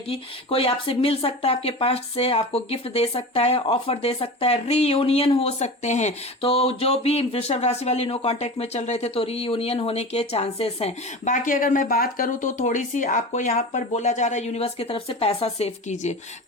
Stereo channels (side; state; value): both; normal; correlation 0.30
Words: कोई आपसे मिल सकता है आपके पास्ट से, आपको गिफ्ट दे सकता है, ऑफर दे सकता है, रीयूनियन हो सकते हैं। तो जो भी वृषभ राशि वाली नो कांटेक्ट में चल रहे थे तो रीयूनियन होने के चांसेस हैं। बाकी अगर मैं बात करूं तो थोड़ी सी आपको यहां पर बोला जा रहा है यूनिवर्स की तरफ से पैसा सेव कीजिए।